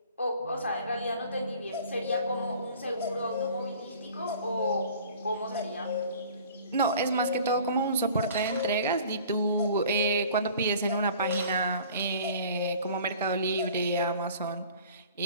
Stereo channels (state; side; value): inverted; both; correlation -0.48